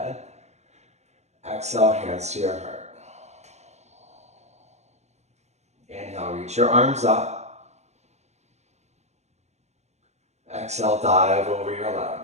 Exhale, hands to your heart. Inhale, reach your arms up. Exhale, dive over your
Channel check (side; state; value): left; late; 0.33 ms